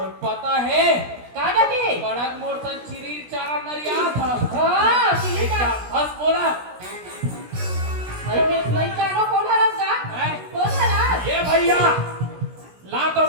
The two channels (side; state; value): left; late; 16 ms